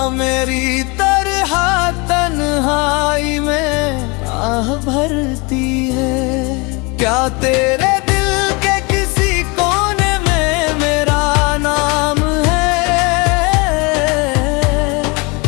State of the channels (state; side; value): quieter; right; 28.4 dB